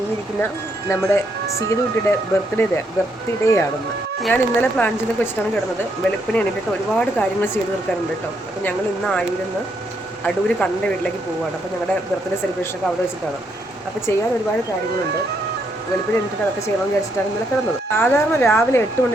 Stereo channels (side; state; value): both; normal; correlation 0.75